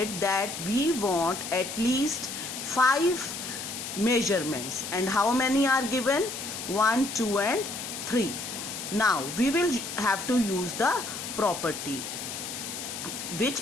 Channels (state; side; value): noise; left; hiss, 7 dB below the sound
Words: that we want at least 5 measurements, and how many are given? 1, 2 and 3. Now we will have to use the property.